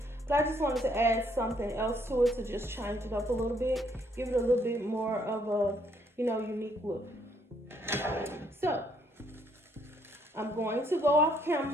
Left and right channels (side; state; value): both; normal; correlation 0.68